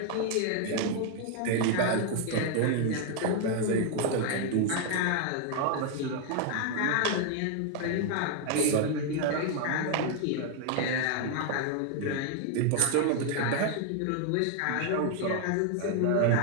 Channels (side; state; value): both; different; correlation 0.00